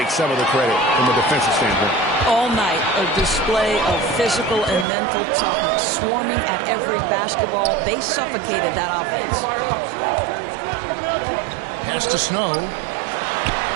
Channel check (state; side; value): drops out; left; at 4.9 s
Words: some of the credit from a defensive standpoint. All night, a display of physical and mental toughness, swarming at every basketball. They suffocated that offense. Pass to Snow.